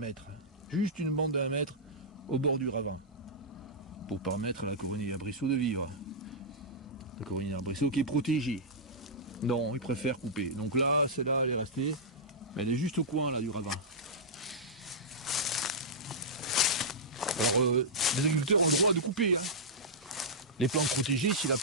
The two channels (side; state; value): both; normal; correlation -0.11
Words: juste une bande de 1 mètre au bord du ravin, pour permettre à la coronille arbrisseau de vivre? La coronille arbrisseau qui est protégée. Non, il préfère couper. Donc là, celle-là, elle est restée, mais elle est juste au coin là du ravin. Alors, les agriculteurs ont le droit de couper les plantes protégées si la